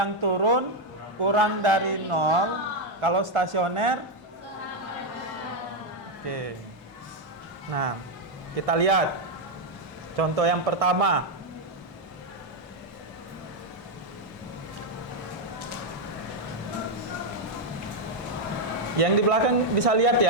turun kurang dari 0. Kalau stasioner, oke. Nah, kita lihat contoh yang pertama. Yang di belakang bisa lihat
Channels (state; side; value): normal; both; correlation 0.02